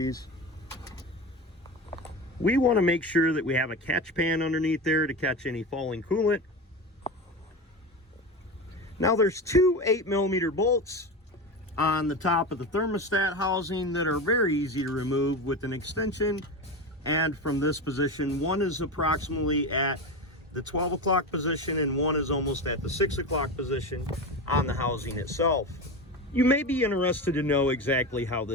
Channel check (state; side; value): normal; both; correlation 0.23